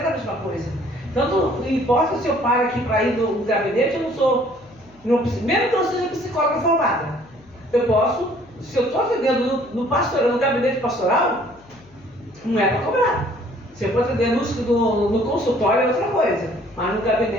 a mesma coisa. Tanto não importa se eu paro aqui para ir no gabinete, eu não sou, mesmo que eu seja psicóloga formada, eu posso, se eu estou atendendo no gabinete pastoral, não é para cobrar. Se eu for atender no consultório é outra coisa, mas no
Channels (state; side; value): noise; left; hum, 28 dB below the sound